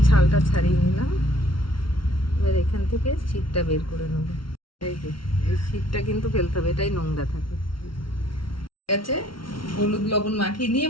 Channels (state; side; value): late; right; 0.74 ms